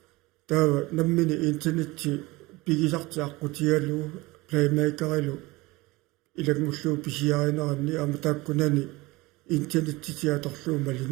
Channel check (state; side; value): quieter; left; 21.8 dB